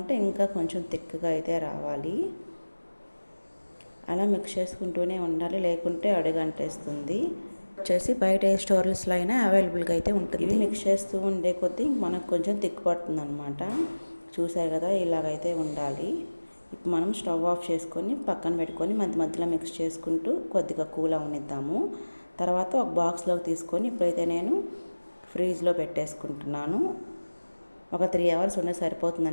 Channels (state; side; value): inverted; both; correlation -1.00